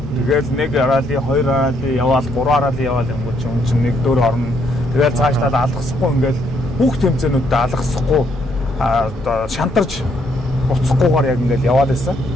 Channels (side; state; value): both; normal; correlation 0.71